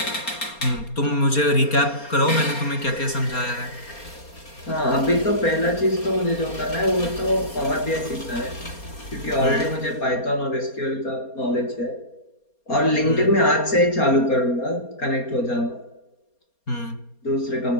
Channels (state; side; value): late; right; 4.3 ms